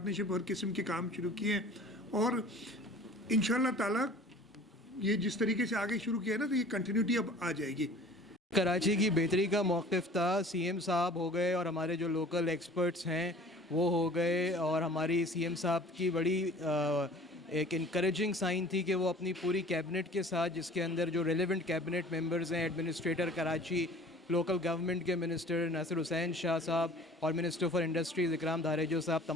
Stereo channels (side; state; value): both; normal; correlation 0.47